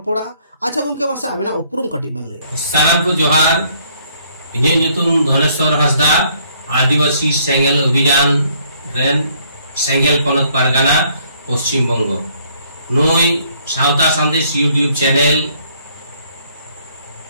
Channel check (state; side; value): inverted; both; correlation -0.65